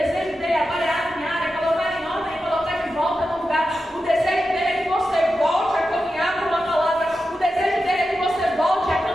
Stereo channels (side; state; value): both; normal; correlation 0.90